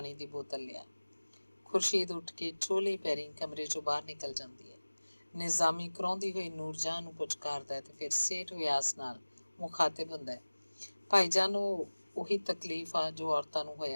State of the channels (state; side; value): inverted; both; correlation -1.00